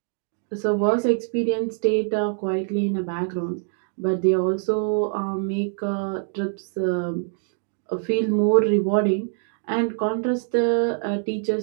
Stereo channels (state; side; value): silent; left; 62 dB below the other